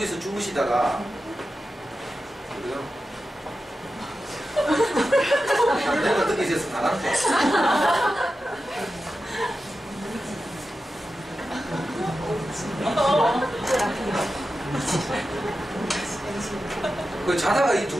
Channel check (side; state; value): both; normal; correlation 0.92